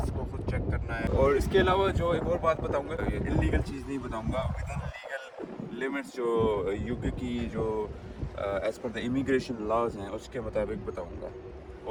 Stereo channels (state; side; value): identical; both; correlation 1.00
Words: کو خود چیک کرنا ہے۔ اور اس کے علاوہ جو ایک اور بات بتاؤں گا، انلیگل چیز نہیں بتاؤں گا، ود ان لیگل لمٹس جو یو کے کی جو ایز پر دا امیگریشن لاز ہیں اس کے مطابق بتاؤں گا۔